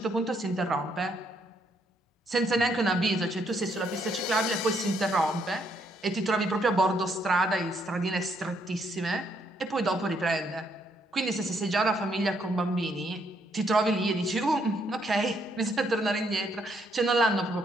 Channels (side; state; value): both; normal; correlation 0.73